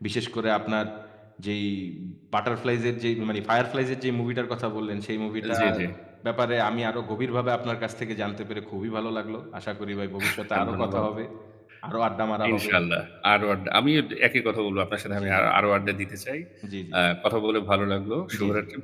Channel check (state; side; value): identical; both; correlation 1.00